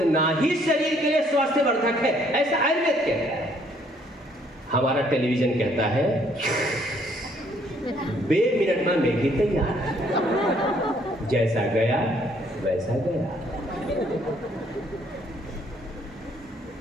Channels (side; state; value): both; normal; correlation 0.65